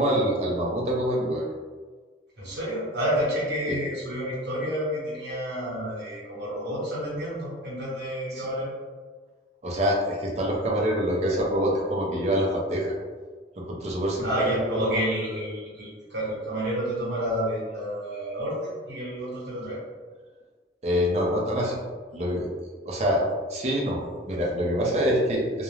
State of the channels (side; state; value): both; normal; correlation 0.34